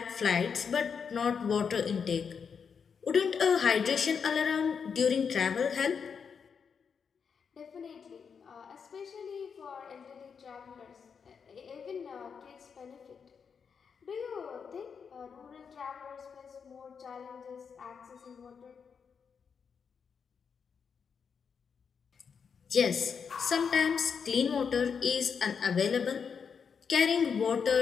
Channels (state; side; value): quieter; right; 6.4 dB